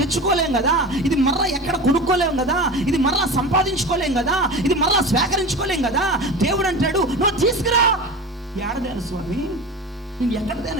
కదా, ఇది మరలా ఎక్కడ కొనుక్కోలేం కదా, ఇది మరలా సంపాదించుకోలేం కదా, ఇది మరలా స్వీకరించుకోలేం కదా. దేవుడు అంటాడు నువ్వు తీసుకురా. ఏడదేను స్వామి, నేను ఎక్కడ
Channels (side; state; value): both; normal; correlation 0.30